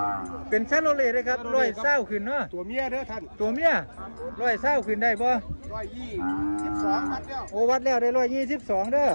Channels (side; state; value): both; inverted; correlation -1.00